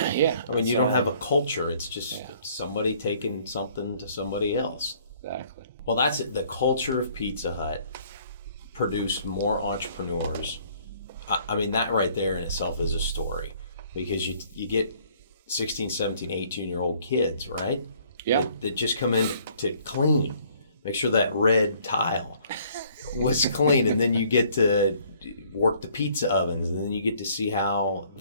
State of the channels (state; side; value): inverted; both; correlation -0.60